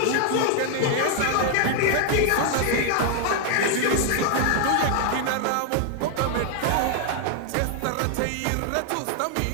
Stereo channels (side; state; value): both; different; correlation 0.00